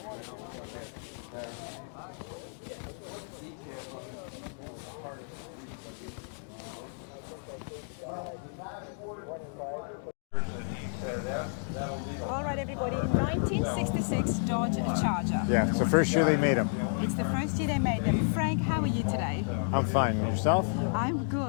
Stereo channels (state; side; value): silent; right; 57 dB below the other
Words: All right, everybody, 1966 Dodge Charger. Yeah, it's the first year they made them. It's the first year they made them. Frank, how are you today? I'm fine. Yourself? I'm